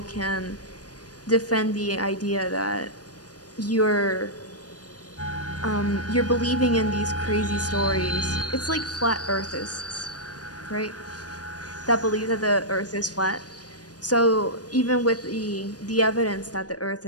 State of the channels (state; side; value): late; right; 0.69 ms